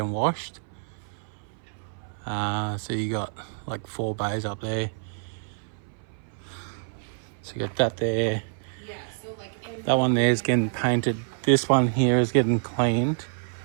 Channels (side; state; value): left; silent; 57 dB below the other